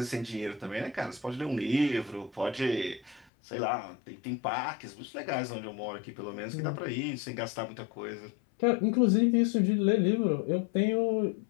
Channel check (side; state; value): right; drops out; at 3.2 s